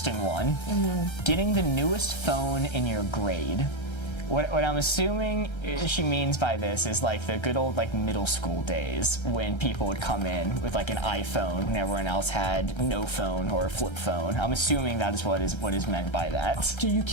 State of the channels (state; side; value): late; right; 1.3 ms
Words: one. Mm-hmm. Getting the newest phone in your grade. What I'm assuming she means by this is like the good old like middle school days when people would come in with like an iPhone when everyone else had no phone or a flip phone. I'm assuming that is what is meant by that. Dude, you